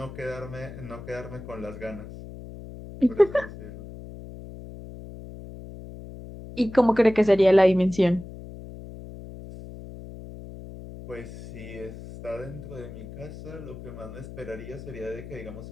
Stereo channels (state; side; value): noise; left; hum, 13 dB below the sound